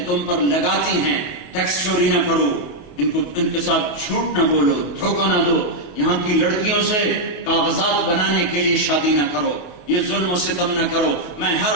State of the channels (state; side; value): late; right; 28 ms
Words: تم پر لگاتی ہیں ٹیکس چوری نہ کرو، ان کے ساتھ جھوٹ نہ بولو، دھوکہ نہ دو، یہاں کی لڑکیوں سے کاغذات بنانے کے لیے شادی نہ کرو، یہ ظلم و ستم نہ کرو۔ میں ہر